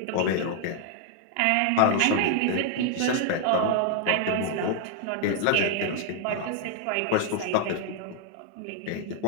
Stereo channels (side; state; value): both; different; correlation 0.00